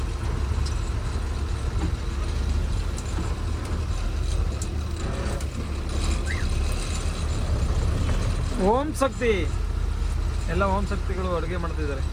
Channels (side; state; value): both; identical; correlation 1.00